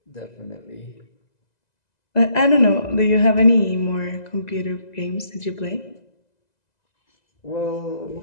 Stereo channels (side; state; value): right; late; 2.0 ms